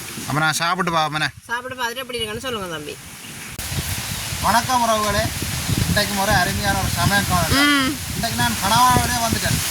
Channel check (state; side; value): identical; both; correlation 1.00